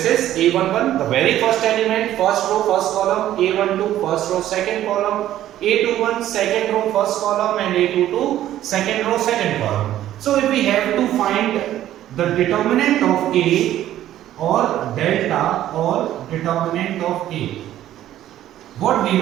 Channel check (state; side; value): quieter; left; 12.8 dB